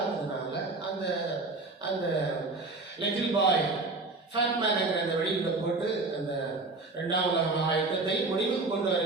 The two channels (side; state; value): left; quieter; 3.4 dB